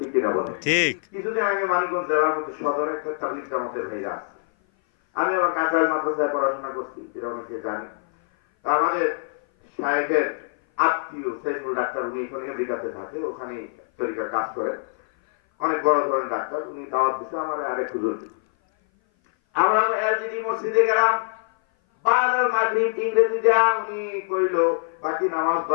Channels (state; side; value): silent; right; 57 dB below the other